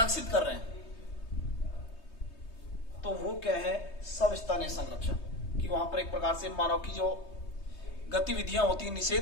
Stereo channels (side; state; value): right; late; 3.2 ms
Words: कर रहे हैं, तो वो क्या है? सवस्थानीय संरक्षण। कि वहां पर एक प्रकार से मानव की जो गतिविधियां होती हैं,